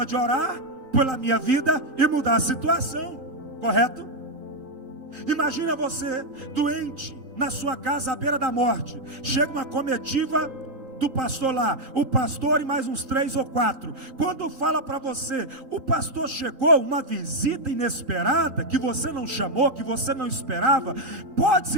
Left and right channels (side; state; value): left; late; 3.8 ms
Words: orar pela minha vida e mudar a situação, correto? Imagina você doente na sua casa à beira da morte. Chega uma comitiva do pastor lá, o pastor e mais uns 3 ou 4. Quando fala para você, o pastor chegou, uma visita inesperada, que você não chamou, que você não esperava, pode